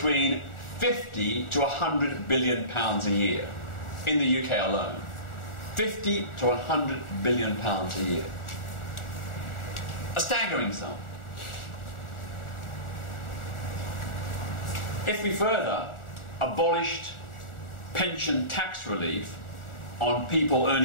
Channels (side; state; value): right; late; 1.4 ms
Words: 50 to 100 billion pounds a year in the UK alone. 50 to 100 billion pounds a year. A staggering sum. If we further abolished pension tax relief on people